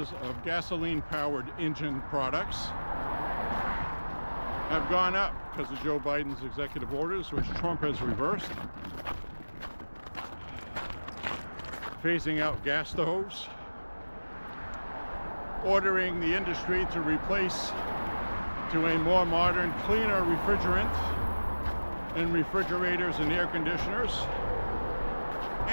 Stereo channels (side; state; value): both; inverted; correlation -1.00